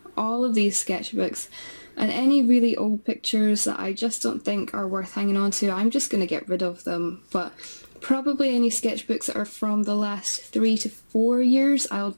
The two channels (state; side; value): inverted; both; correlation -1.00